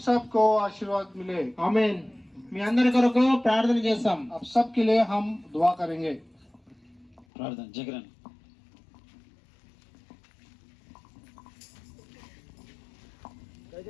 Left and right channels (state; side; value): drops out; right; at 7.2 s